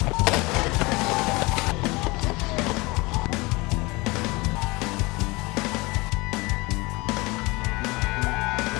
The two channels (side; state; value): right; quieter; 24.2 dB